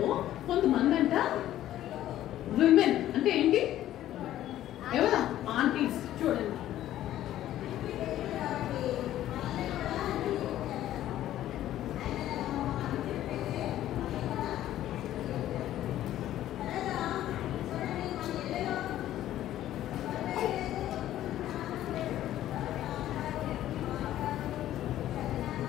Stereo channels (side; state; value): right; quieter; 13.0 dB